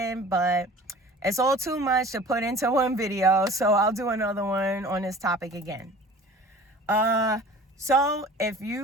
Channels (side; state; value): both; normal; correlation 0.43